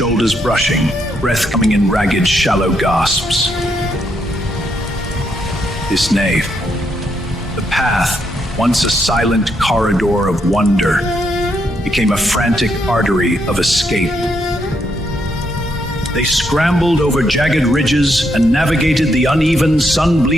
brushing, breath coming in ragged, shallow gasps. This nave, the path, once a silent corridor of wonder, became a frantic artery of escape. They scrambled over jagged ridges and navigated the uneven,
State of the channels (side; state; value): both; normal; correlation 0.77